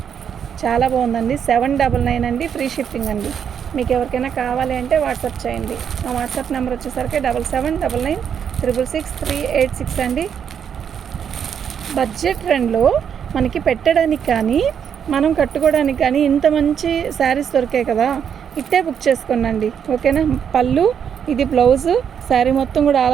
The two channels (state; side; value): quieter; left; 8.0 dB